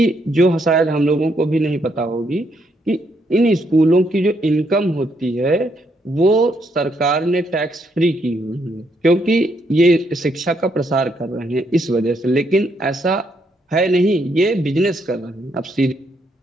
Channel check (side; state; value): both; normal; correlation 0.75